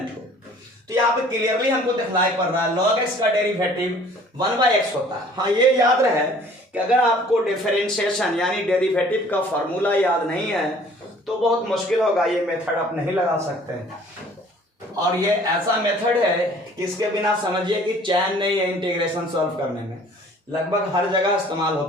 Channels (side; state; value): both; normal; correlation 0.53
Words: हो। तो यहाँ पे क्लियरली हमको दिखलाई पड़ रहा है log x का डेरिवेटिव 1/x होता है। हाँ, ये याद रहे कि अगर आपको डिफरेंशिएशन यानी डेरिवेटिव का फॉर्मूला याद नहीं है तो बहुत मुश्किल होगा, ये मेथड आप नहीं लगा सकते हैं। और ये ऐसा मेथड है कि इसके बिना समझिए कि चैन नहीं है इंटीग्रेशन सॉल्व करने में, लगभग हर जगह इस्तेमाल